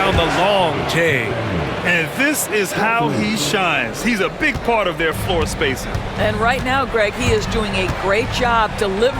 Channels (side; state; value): both; identical; correlation 1.00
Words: the long J. And this is how he shines. He's a big part of their floor spacing. And right now, Greg, he is doing a great job